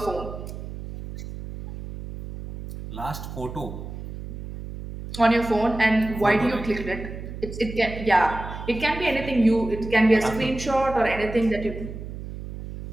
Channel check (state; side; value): noise; right; hum, 10 dB below the sound